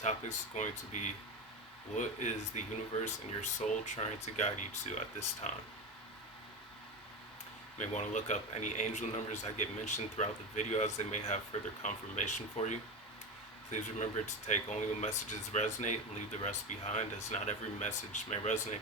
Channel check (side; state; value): both; normal; correlation 0.21